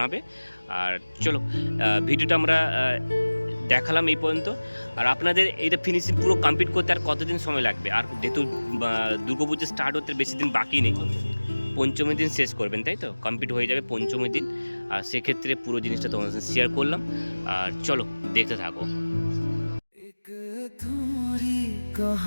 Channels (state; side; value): inverted; both; correlation -1.00